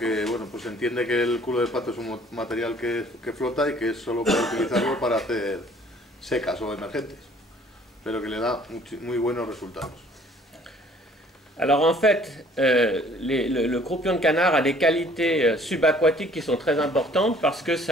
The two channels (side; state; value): both; normal; correlation 0.56